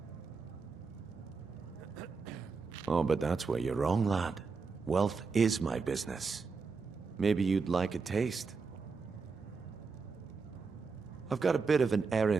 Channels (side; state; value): left; quieter; 4.8 dB